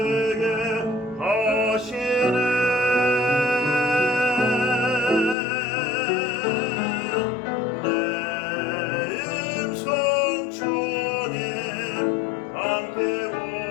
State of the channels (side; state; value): right; drops out; at 5.4 s